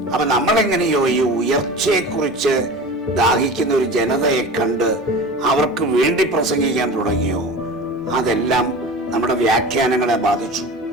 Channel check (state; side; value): normal; both; correlation 0.34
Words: അപ്പൊ നമ്മളെങ്ങനെയോ ഈ ഉയർച്ചയെക്കുറിച്ച് ദാഹിക്കുന്ന ഒരു ജനതയെ കണ്ട് അവർക്ക് വേണ്ടി പ്രസംഗിക്കാൻ തുടങ്ങിയോ, അതെല്ലാം നമ്മുടെ വ്യാഖ്യാനങ്ങളെ ബാധിച്ചു.